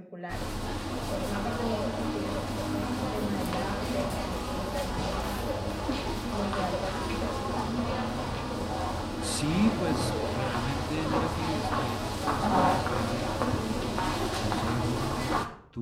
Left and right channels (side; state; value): both; identical; correlation 1.00